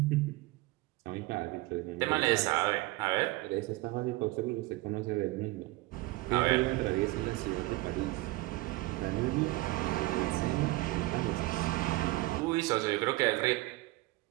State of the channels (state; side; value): quieter; left; 20.4 dB